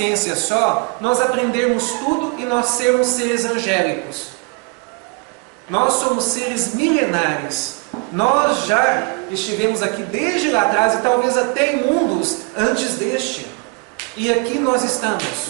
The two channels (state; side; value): quieter; left; 31.0 dB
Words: só nós aprendermos tudo e nós sermos seres angélicos. Nós somos seres milenares. Nós já estivemos aqui desde lá atrás e talvez até em mundos antes deste. E aqui nós estamos.